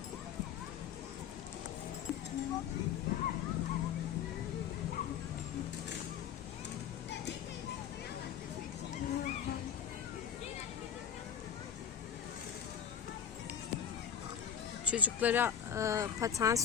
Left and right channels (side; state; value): right; quieter; 8.3 dB